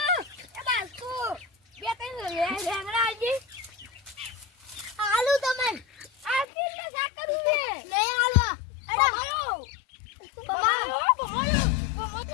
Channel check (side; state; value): right; drops out; at 6.5 s